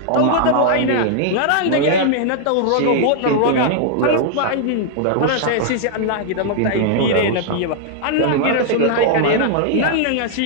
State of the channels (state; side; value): different; both; correlation -0.01